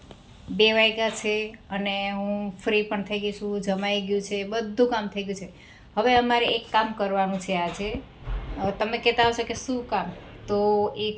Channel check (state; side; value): identical; both; correlation 1.00